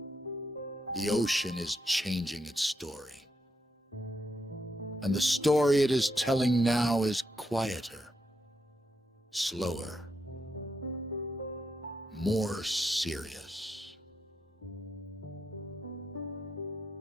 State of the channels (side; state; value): both; normal; correlation 0.82